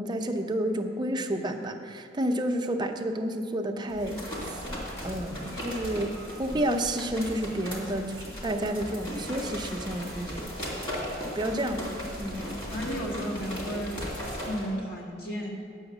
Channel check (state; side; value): normal; both; correlation 0.59